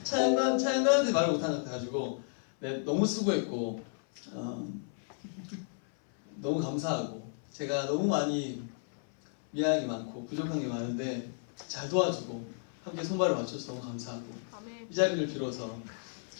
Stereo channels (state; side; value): silent; right; 56 dB below the other